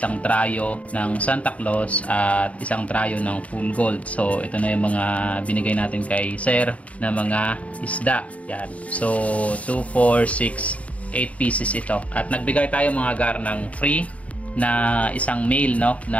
trayo ng Santa Claus at isang trayo ng full gold. So ito na yung mga binigay natin kay sir na mga isda. Yan. So 2, 4, 6, 8 pieces ito. At nagbigay tayo mga gar ng free na isang male, no,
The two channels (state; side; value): late; right; 0.066 ms